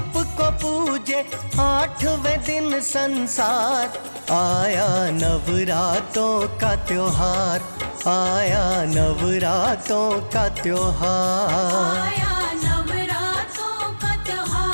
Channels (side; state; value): both; inverted; correlation -1.00